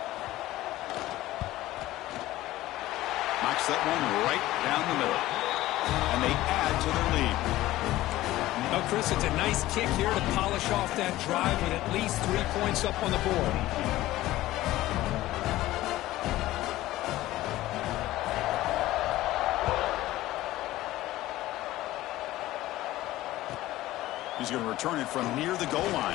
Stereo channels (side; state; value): right; quieter; 16.2 dB